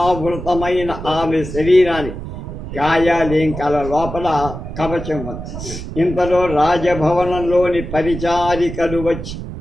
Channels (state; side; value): noise; right; rumble, 9 dB below the sound